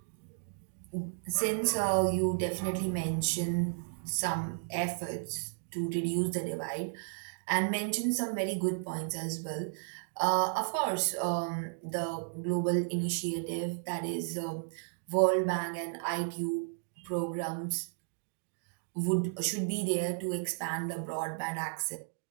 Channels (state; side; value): silent; left; digital silence